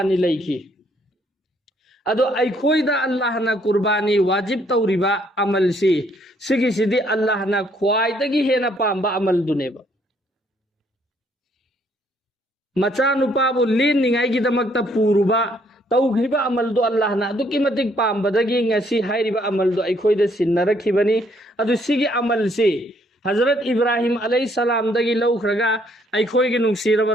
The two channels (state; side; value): normal; both; correlation 0.67